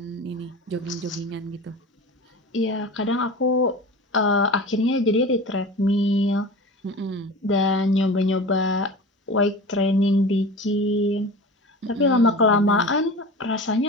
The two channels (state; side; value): normal; both; correlation 0.34